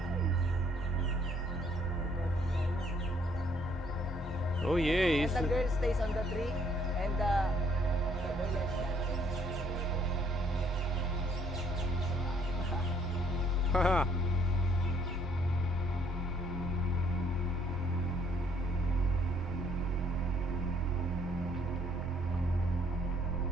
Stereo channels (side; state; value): both; normal; correlation 0.65